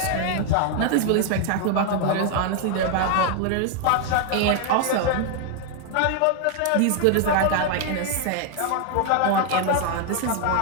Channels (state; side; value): different; both; correlation 0.01